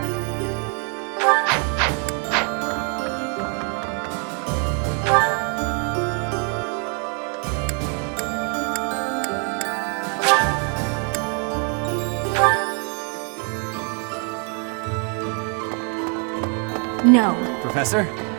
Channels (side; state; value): left; quieter; 39.7 dB